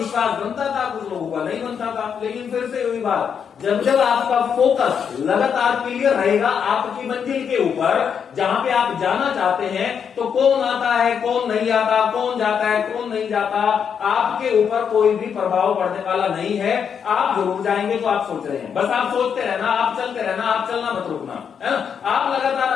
बनता था, कुछ लोगों का नहीं बनता था। लेकिन फिर से वही बात, जब जब आपका फोकस लगातार क्लियर रहेगा आपकी मंजिल के ऊपर, जहां पे आप जाना चाहते हैं, तो कौन आता है कौन नहीं आता, कौन जाता है कौन नहीं जाता, आपके ऊपर कोई भी प्रभाव पड़ने वाला नहीं है। आप जरूर जाएंगे तो आप सोच रहे हैं, बस आप सोचते रहना, आप चलते रहना, आप चलना मत रुकना, है ना। आप लगातार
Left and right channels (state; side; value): quieter; right; 7.3 dB